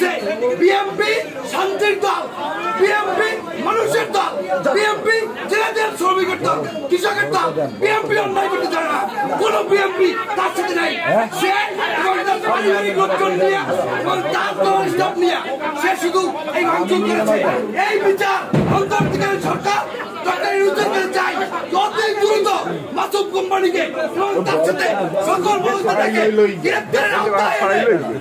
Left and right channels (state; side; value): identical; both; correlation 1.00